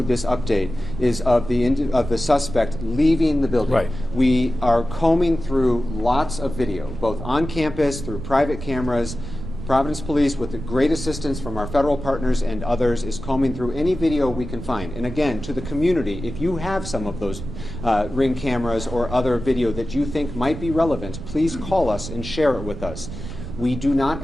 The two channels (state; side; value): noise; right; rumble, 9 dB below the sound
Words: this update is of the suspect leaving the building. Right. We are combing through lots of video, both on campus, through private cameras. Providence Police, with the great assistance from our federal partners and others, is combing through any video we can find. And again, to the community, if you have some of those Ring cameras or other video that you think might be relevant, please call us and share it with us. We do